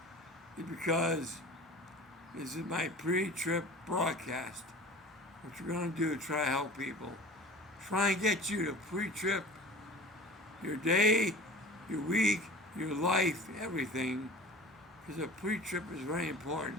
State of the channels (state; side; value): normal; both; correlation 0.39